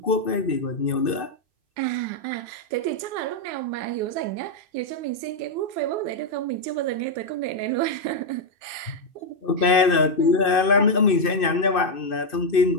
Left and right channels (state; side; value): late; right; 2.6 ms